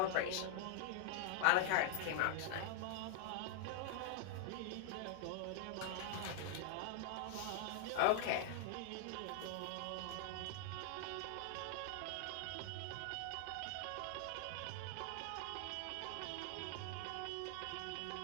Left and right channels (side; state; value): both; different; correlation 0.00